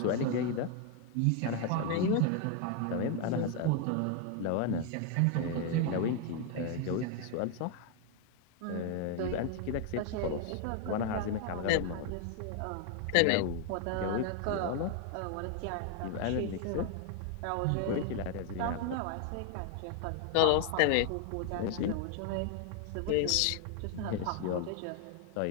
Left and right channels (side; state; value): both; different; correlation 0.01